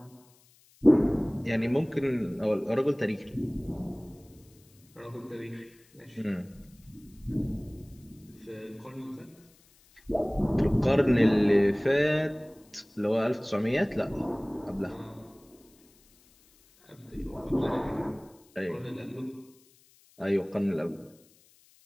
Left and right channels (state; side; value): noise; left; hiss, 30 dB below the sound